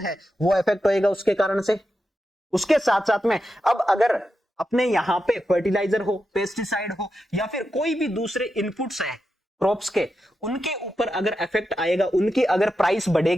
है वो इफेक्ट होएगा उसके कारण से। उसके साथ साथ में अब अगर अपने यहाँ पे फर्टिलाइजर हो, पेस्टिसाइड हो या फिर कोई भी दूसरे इनपुट्स है क्रॉप्स के, उनके ऊपर अगर इफेक्ट आएगा, उनकी अगर प्राइस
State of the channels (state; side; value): normal; both; correlation 0.88